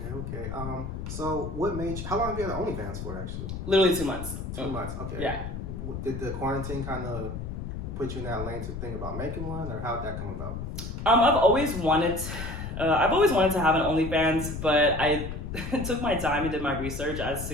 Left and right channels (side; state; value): left; noise; rumble, 6 dB below the sound